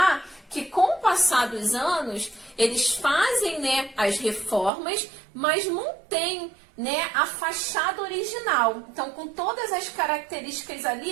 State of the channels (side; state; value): left; drops out; at 4.7 s